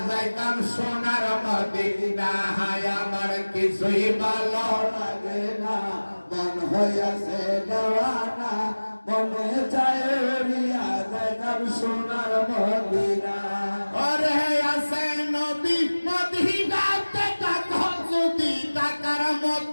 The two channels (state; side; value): inverted; both; correlation -1.00